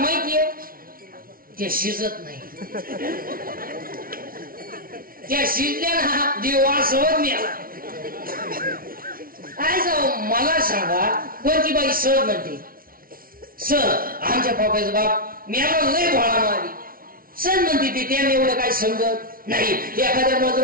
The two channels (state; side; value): late; left; 0.42 ms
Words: ते शिजत नाही. त्या शिजल्या ना देव वासवत मिळाला. काय जाऊ मला सांगा कोणती बाई सर म्हणते? सर आमच्या पप्पाचा बाप मिळाला लय भोळा मारी. सर म्हणते ती त्याने एवढं काय समजत नाही. एखाद्या